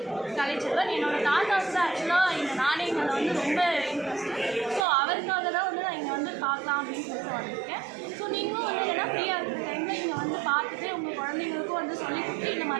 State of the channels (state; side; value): drops out; left; at 4.9 s